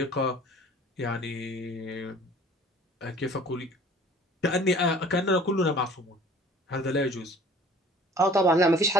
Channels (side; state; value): both; normal; correlation 0.49